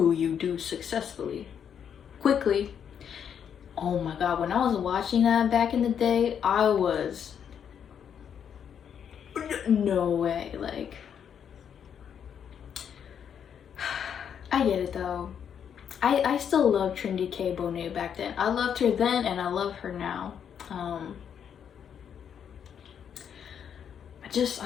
you do successfully? Quickly. Oh my god, when I was watching that back in the day, I was... no way, like... I get it though. I still love Trinity K. Bonet back then. I loved her then, and I love her now.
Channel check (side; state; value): right; quieter; 8.2 dB